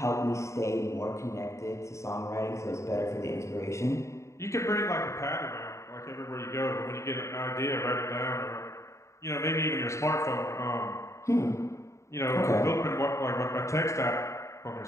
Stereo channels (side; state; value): right; late; 0.14 ms